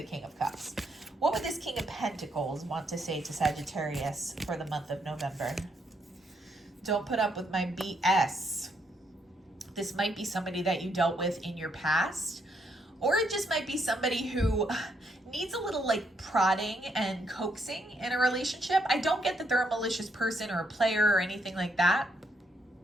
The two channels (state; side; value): normal; both; correlation 0.75